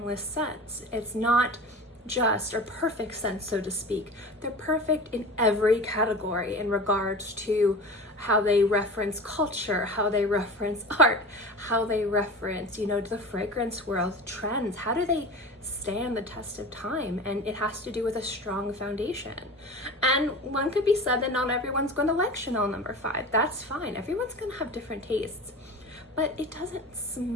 scents. It's not just or perfect scents, so to speak. They're perfect in every category in regards to how they reference culture, how they reference art, how they reference, you know, the fragrance world trends. How do they stand the test of time? And it has to do with a strong foundation. And one could be said that not everyone's going to like Chanel No. 5. That's fine. Everyone's going to have different tastes. But it doesn't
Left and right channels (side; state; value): both; normal; correlation 0.33